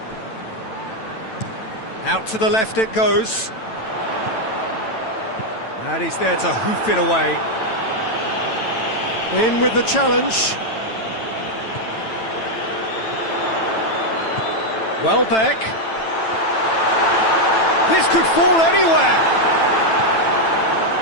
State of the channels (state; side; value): late; right; 9.0 ms